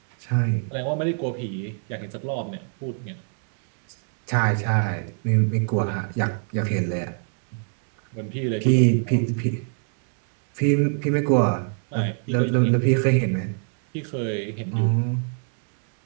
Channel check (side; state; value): left; silent; 56 dB below the other